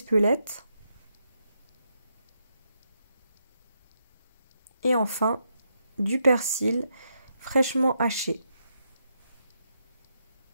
Et enfin, du persil fraîchement haché.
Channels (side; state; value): both; inverted; correlation -0.81